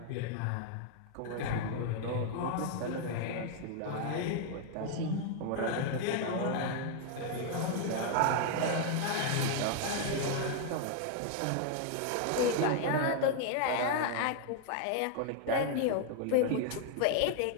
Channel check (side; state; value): both; different; correlation 0.00